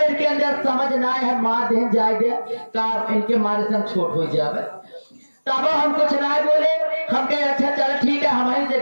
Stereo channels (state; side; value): inverted; both; correlation -1.00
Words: के अंदर समझ ना है मार दे जाए का इनके मारे से हम छोट हो जाए। तब हम कुछ ना बोले, हम कहे अच्छा चलो ठीक है हमारी से